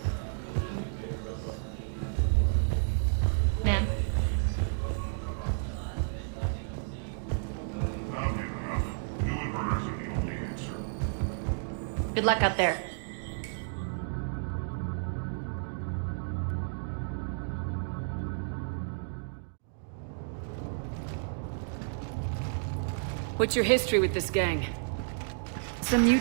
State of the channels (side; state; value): left; silent; digital silence